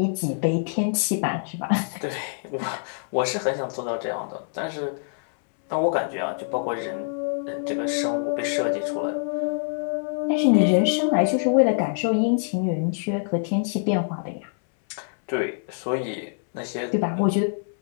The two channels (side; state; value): right; silent; 62 dB below the other